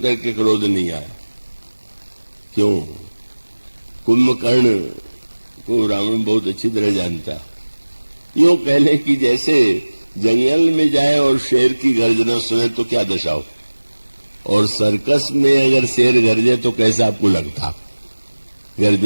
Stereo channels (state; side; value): inverted; both; correlation -1.00